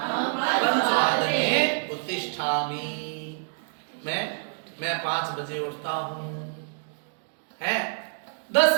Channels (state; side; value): silent; left; digital silence